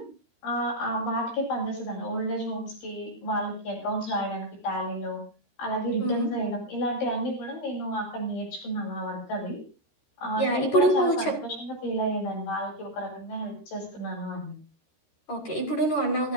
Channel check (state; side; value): late; right; 13 ms